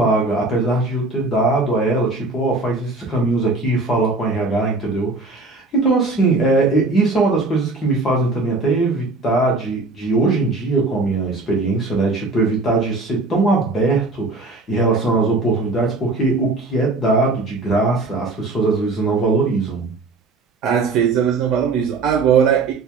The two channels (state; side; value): quieter; left; 3.4 dB